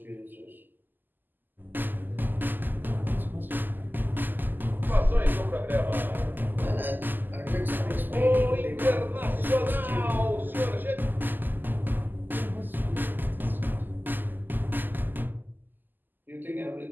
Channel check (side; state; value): left; late; 0.089 ms